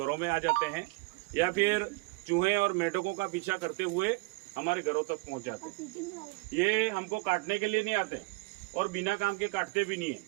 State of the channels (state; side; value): quieter; left; 25.1 dB